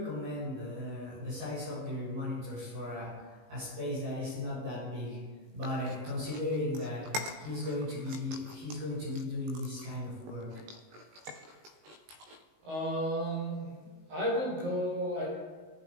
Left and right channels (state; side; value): late; left; 19 ms